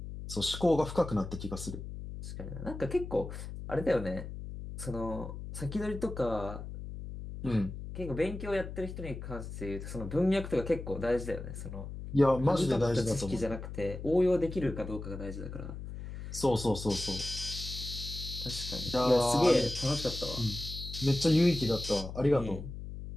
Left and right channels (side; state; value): left; noise; hum, 9 dB below the sound